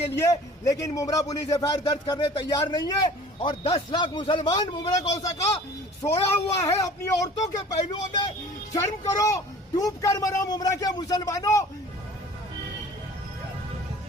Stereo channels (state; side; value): normal; both; correlation 0.46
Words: लिए, लेकिन मुमरा पुलिस एफआईआर दर्ज करने तैयार नहीं है। और 10 लाख मुसलमान मुमरा कौसा का सोया हुआ है अपनी औरतों के पहलुओं में। शर्म करो, डूब कर मरो मुमरा के मुसलमानों।